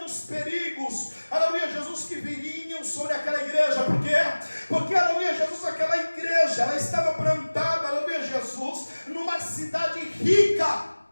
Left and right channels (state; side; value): inverted; both; correlation -1.00